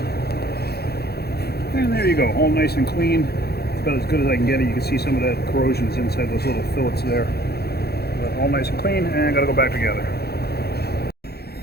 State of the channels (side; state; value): right; late; 0.46 ms